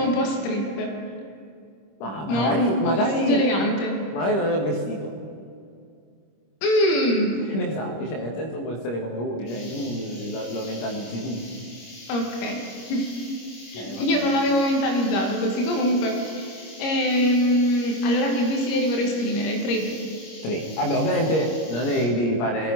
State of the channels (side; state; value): right; late; 25 ms